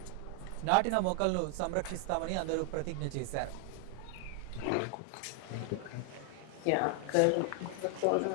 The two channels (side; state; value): both; different; correlation 0.00